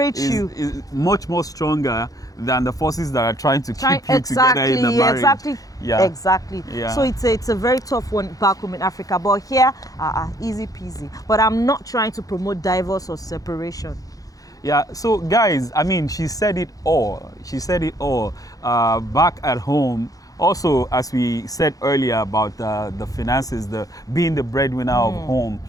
is much more stronger than the forces that are trying to keep you together in the marriage. Exactly. So it's a very tough one back home in Africa, but here easy peasy. But I'm not trying to promote divorce or separation. Yeah, so guys, I mean, she said it all. Back at home. Also, as we said earlier about the finances, being the breadwinner of home.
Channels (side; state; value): right; late; 0.17 ms